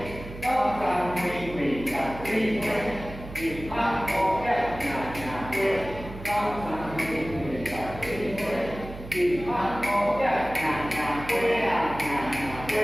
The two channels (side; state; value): right; noise; hum, 13 dB below the sound